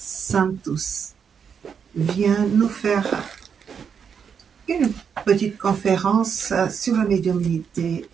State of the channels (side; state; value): left; quieter; 6.9 dB